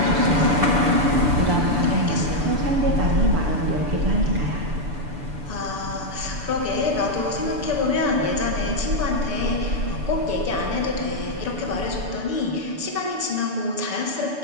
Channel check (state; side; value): late; left; 6.9 ms